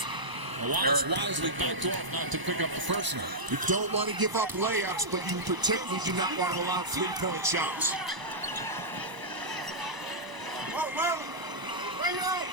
Wallace wisely backed off not to pick up the personal. You don't want to give up layups, but you particularly do not want to allow 3-point shots.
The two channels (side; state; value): left; late; 1.0 ms